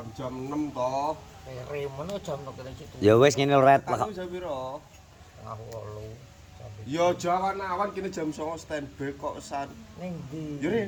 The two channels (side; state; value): both; identical; correlation 1.00